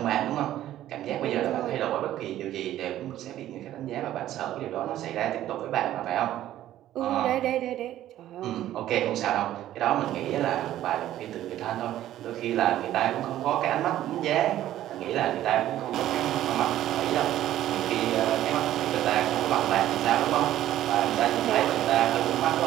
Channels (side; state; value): left; quieter; 13.0 dB